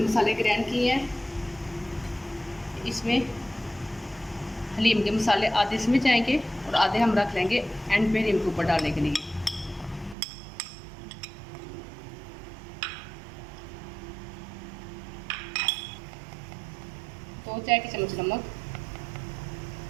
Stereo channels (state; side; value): drops out; left; at 10.2 s